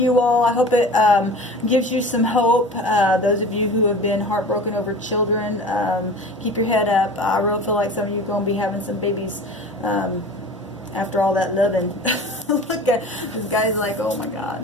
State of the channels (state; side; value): normal; both; correlation 0.38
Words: all. I hope it gives you some hope. Those of you who have been heartbroken over children, keep your head up. I really feel like some of you are going to be having some babies after all that loving. Look at this guy's like, oh my